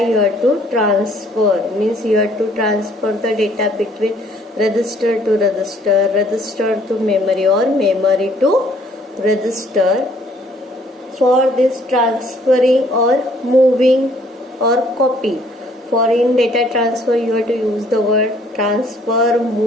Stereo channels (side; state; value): both; normal; correlation 0.61